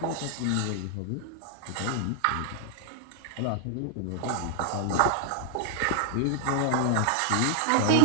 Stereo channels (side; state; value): both; different; correlation 0.00